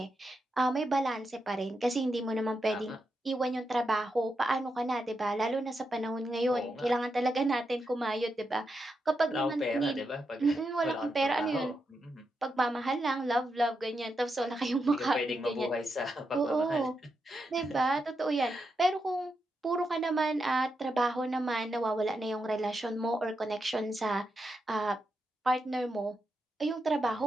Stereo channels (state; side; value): normal; both; correlation 0.85